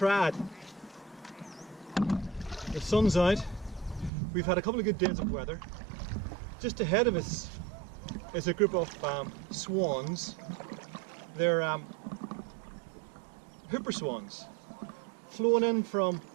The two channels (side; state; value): left; drops out; at 4.1 s